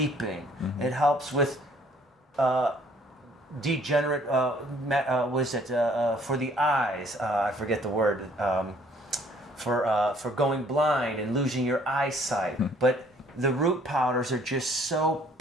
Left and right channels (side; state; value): both; normal; correlation 0.60